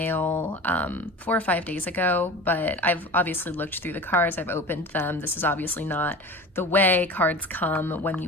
4 or 5 days ago, but I've obviously looked through the cards, I've opened them. This is obviously not the way cards come when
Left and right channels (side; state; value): both; normal; correlation 0.34